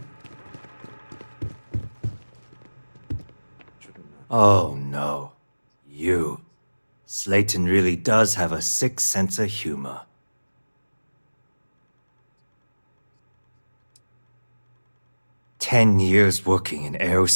Oh no. You. Slayton really does have a sick sense of humor. "10 years working in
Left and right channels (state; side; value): inverted; both; correlation -1.00